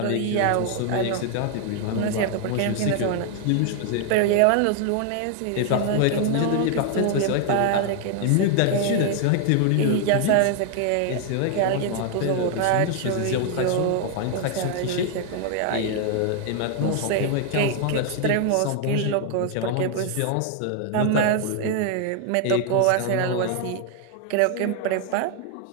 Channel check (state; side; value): different; both; correlation 0.00